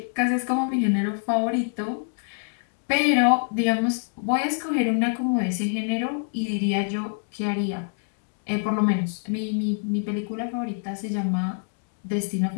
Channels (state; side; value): silent; right; 61 dB below the other